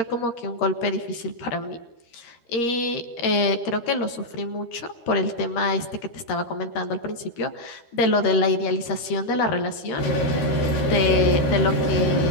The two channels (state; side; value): late; right; 13 ms